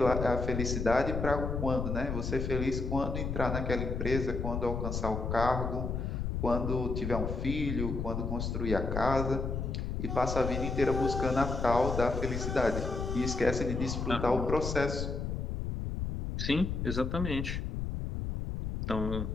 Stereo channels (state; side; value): noise; left; rumble, 2 dB below the sound